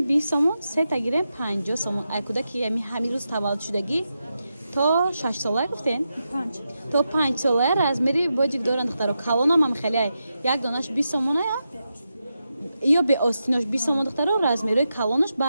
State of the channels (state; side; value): inverted; both; correlation -0.88